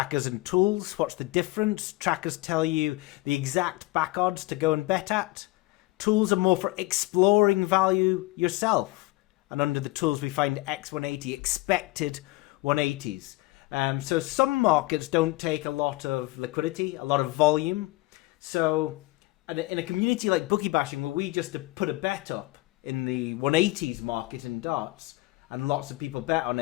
and tools. What's the difference? Trackers tell you the exact back odds to go and bet at. Tools are more for exploring value yourself. And under the tools we find x180, expected 180s. So some markets don't take a lot of liquidity, a lot of volume. So in a community like Bookie Bashing, where we just put a bet up in the 180s market in darts, and lots of people bet on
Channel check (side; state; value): right; quieter; 21.0 dB